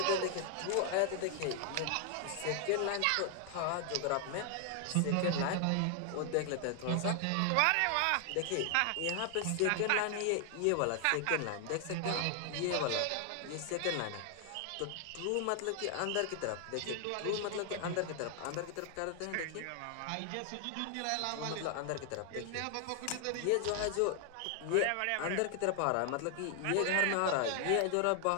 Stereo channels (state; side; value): different; both; correlation 0.00